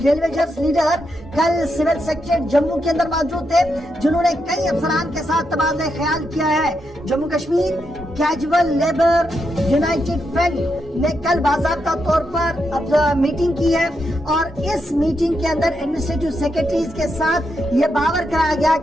लीडर कल सिविल सेक्रेटरीट जम्मू के अंदर मौजूद थे, जिन्होंने कई अफसरान के साथ तबादला ख्याल किया है। Jammu Kashmir casual labour United front ने कल बाज़ाब्ता तौर पर मीटिंग की है और इस मीटिंग के अंदर एडमिनिस्ट्रेटिव सेक्रेटरीज के साथ ये बावर कराया गया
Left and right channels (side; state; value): both; normal; correlation 0.83